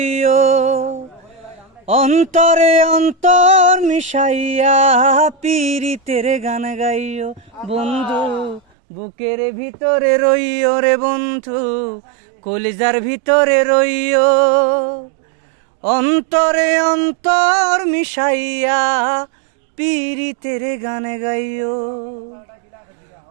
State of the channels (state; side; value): drops out; left; at 8.6 s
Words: অন্তরে অন্তর মিশাইয়া পীরিতের গান গাইও বন্ধু, বুকের ভিতরে রইও রে বন্ধু, কলিজার ভিতরে রইও। অন্তরে অন্তর মিশাইয়া পীরিতের গান গাইও।